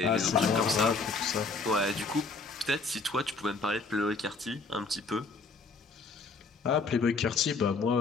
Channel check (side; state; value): right; quieter; 4.1 dB